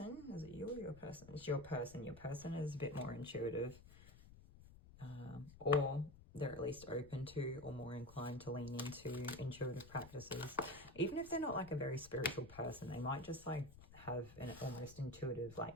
is it you or your person? It's your person. Your person is a bit more intuitive, or they're at least open to or more inclined to lean into intuitive practices. Even if they're not like a very spiritual person, they might just like have an almost intuitive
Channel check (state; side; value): noise; left; rumble, 18 dB below the sound